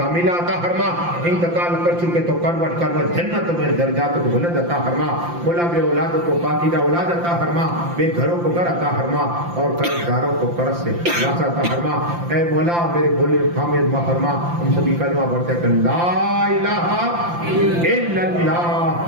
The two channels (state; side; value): late; left; 5.8 ms